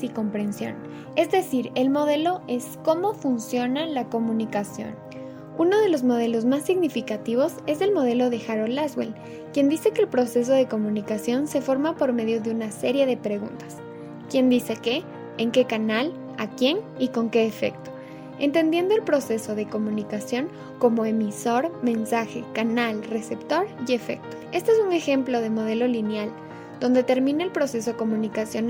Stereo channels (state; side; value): identical; both; correlation 1.00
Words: y comprensión. Es decir, el modelo es cómo funciona la comunicación. Uno de los modelos más significativos es el modelo de Harold Laswell, quien dice que el proceso de comunicación se forma por medio de una serie de preguntas. ¿Quién dice qué? ¿En qué canal? ¿A quién? ¿Y con qué efecto? Entendiendo el proceso de comunicación como emisor, mensaje, canal, receptor y efecto. Este es un ejemplo de modelo lineal, donde termina el proceso